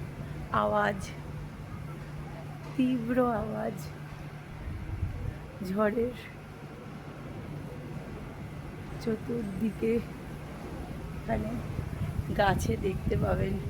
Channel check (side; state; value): both; identical; correlation 1.00